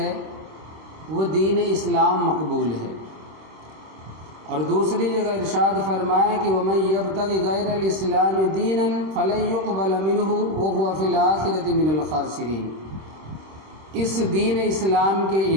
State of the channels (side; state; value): left; late; 26 ms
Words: وہ دین اسلام مقبول ہے۔ اور دوسری جگہ ارشاد فرمایا کہ وَمَن يَبْتَغِ غَيْرَ الْإِسْلَامِ دِينًا فَلَن يُقْبَلَ مِنْهُ وَهُوَ فِي الْآخِرَةِ مِنَ الْخَاسِرِينَ، اس دین اسلام کے